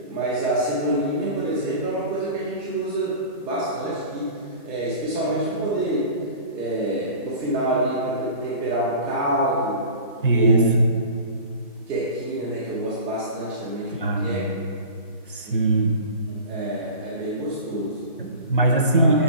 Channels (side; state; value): both; inverted; correlation -0.37